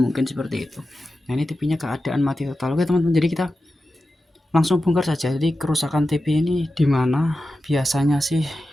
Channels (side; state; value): both; normal; correlation 0.92